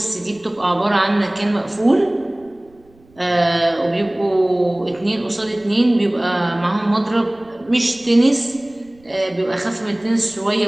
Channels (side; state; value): right; noise; rumble, 30 dB below the sound